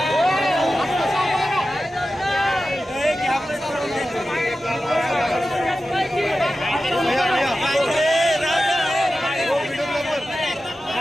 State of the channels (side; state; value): both; normal; correlation 0.93